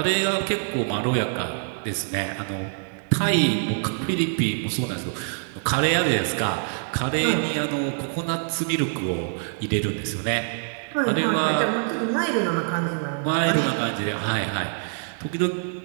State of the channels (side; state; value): left; silent; digital silence